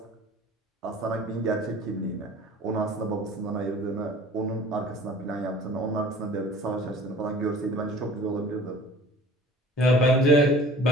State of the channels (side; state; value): both; normal; correlation 0.46